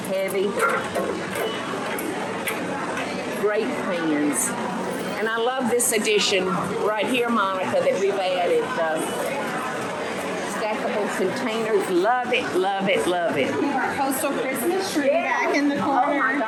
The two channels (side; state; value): both; identical; correlation 1.00